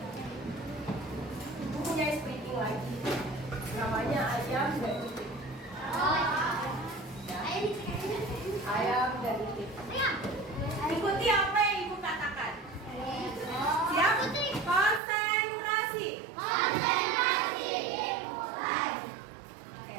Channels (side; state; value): left; drops out; at 15.0 s